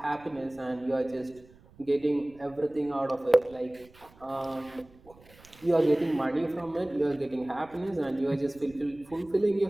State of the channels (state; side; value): noise; right; rumble, 25 dB below the sound